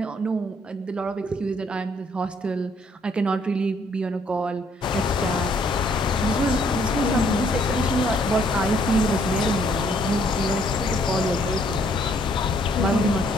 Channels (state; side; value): normal; both; correlation 0.66